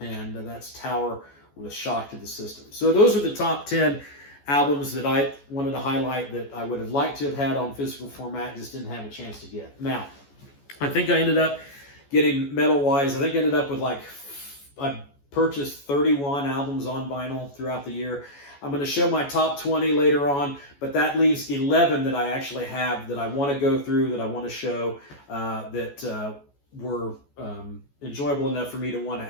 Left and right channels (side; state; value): right; late; 14 ms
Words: that's Tower with Shock to the System. So those are the top 10 albums that I wanted to highlight that I would have liked to have had on physical format, just didn't have a chance to get. Now, I think I ended up getting metal-wise, I think I ended up with I purchased 31 albums on vinyl throughout the year. I'm going to show my top 20 later on, but that leaves 11 that I actually have that I want to go through, that I want to show, that were enjoyable enough for me to want to